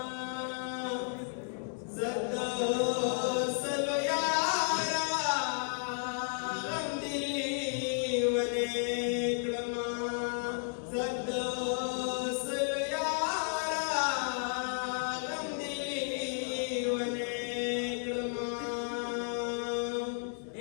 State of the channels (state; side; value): silent; right; 56 dB below the other